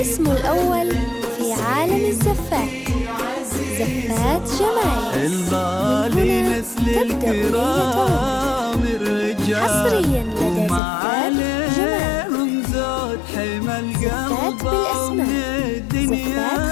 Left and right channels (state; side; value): drops out; right; at 10.8 s